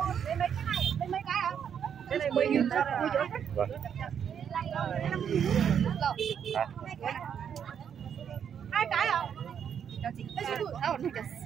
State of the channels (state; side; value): quieter; left; 8.2 dB